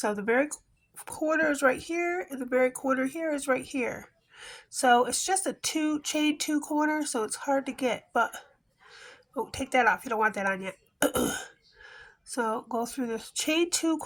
the very corner is right here, and the very corner here is right here. So it's just a chain 2 corner, so it's hard to get. But oh, take that off. You don't want that on yet. So go through the chain 2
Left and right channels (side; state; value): both; identical; correlation 1.00